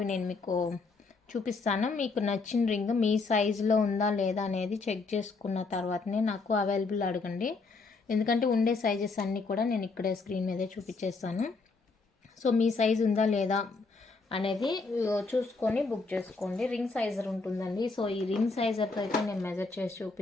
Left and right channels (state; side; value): quieter; right; 4.0 dB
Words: నేను మీకు చూపిస్తాను. మీకు నచ్చిన రింగ్ మీ సైజులో ఉందా లేదా అనేది చెక్ చేసుకున్న తర్వాతనే నాకు అవైలబుల్ అడగండి. ఎందుకంటే ఉండే సైజెస్ అన్నీ కూడా నేను ఇక్కడే స్క్రీన్ మీదే చూపించేస్తాను. సో మీ సైజు ఉందా లేదా అనేది చూసుకొని బుక్ చేసుకోండి. రింగ్ సైజర్ ఉంటుందండి. సో ఈ రింగ్ సైజర్తో అయితే నేను మెజర్ చేసి